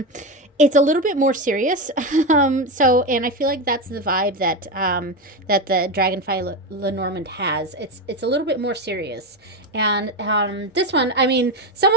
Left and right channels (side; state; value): both; normal; correlation 0.15